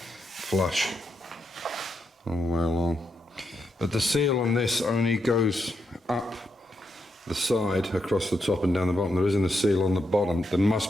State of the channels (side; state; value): both; normal; correlation 0.82